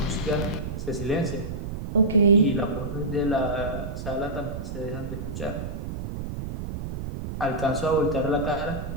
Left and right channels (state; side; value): noise; right; rumble, 6 dB below the sound